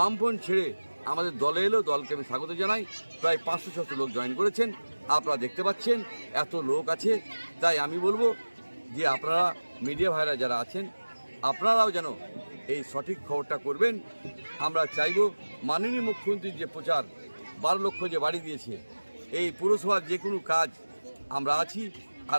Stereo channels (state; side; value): inverted; both; correlation -1.00